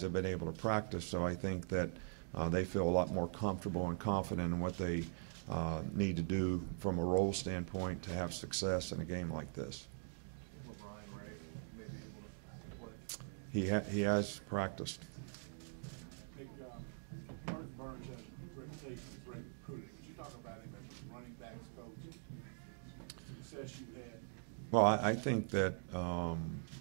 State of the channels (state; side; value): silent; left; digital silence